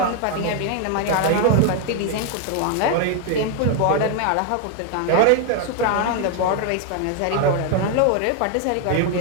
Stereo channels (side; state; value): both; different; correlation 0.01